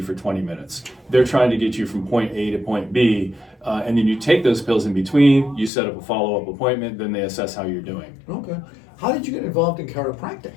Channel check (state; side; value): drops out; right; at 5.7 s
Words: for 20 minutes. They're trying to get you from point A to point B, and then you take those pills in between, you set up a follow-up appointment, then they assess how you're doing. Okay. How did you get involved in chiropractic?